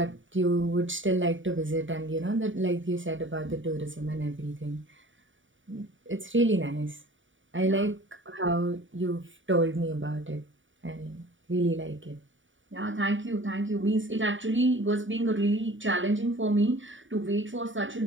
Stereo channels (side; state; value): left; late; 0.56 ms